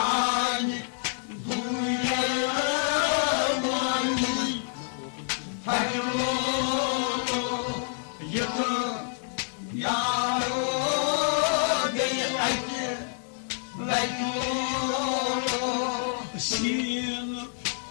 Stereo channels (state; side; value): silent; right; 59 dB below the other